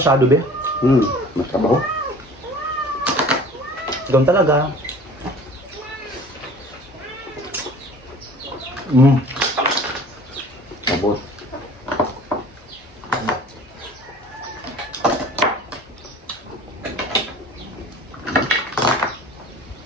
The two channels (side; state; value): both; normal; correlation 0.46